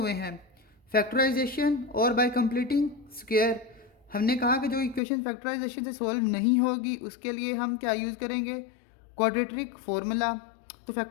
हैं, फैक्टराइजेशन और बाय कंप्लीटिंग स्क्वायर। हमने कहा कि जो इक्वेशन फैक्टराइजेशन से सॉल्व नहीं होगी, उसके लिए हम क्या यूज़ करेंगे? Quadratic formula. तो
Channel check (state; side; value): drops out; right; at 5.0 s